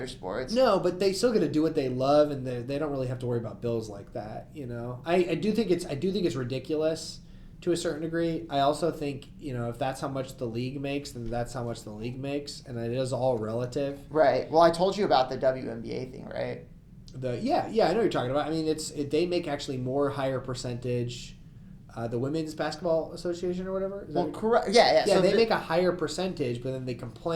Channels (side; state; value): both; identical; correlation 1.00